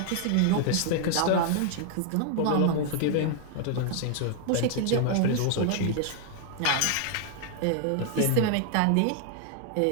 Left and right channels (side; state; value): both; different; correlation 0.00